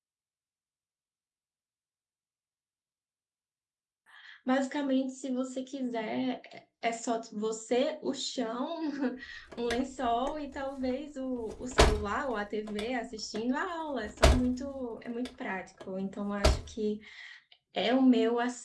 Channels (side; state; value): both; identical; correlation 1.00